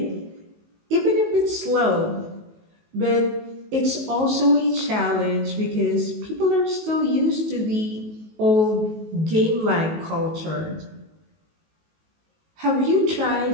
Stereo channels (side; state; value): left; late; 19 ms